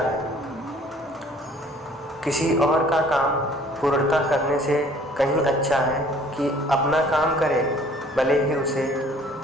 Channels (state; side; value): normal; both; correlation 0.55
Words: किसी और का काम पूर्णता करने से कहीं अच्छा है कि अपना काम करे, भले ही उसे